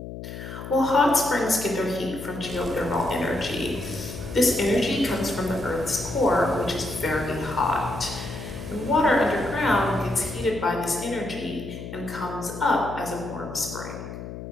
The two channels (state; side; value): noise; left; hum, 10 dB below the sound